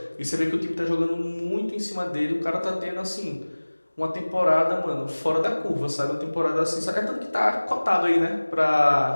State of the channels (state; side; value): inverted; both; correlation -1.00